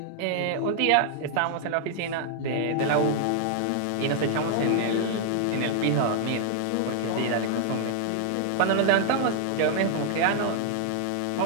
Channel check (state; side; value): different; both; correlation -0.01